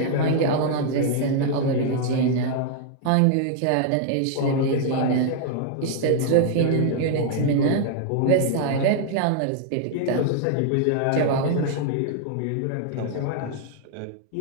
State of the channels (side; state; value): both; different; correlation -0.01